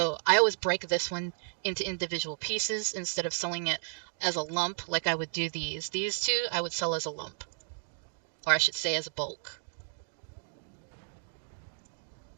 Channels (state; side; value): silent; left; digital silence